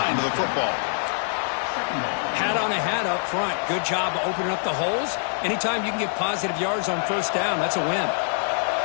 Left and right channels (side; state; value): right; silent; digital silence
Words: to the football. Hat on a hat up front. Good job of opening up the holes. Anytime you can get positive yards on first down, that's a win.